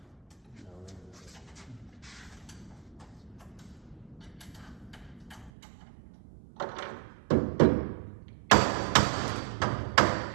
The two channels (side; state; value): left; drops out; at 5.5 s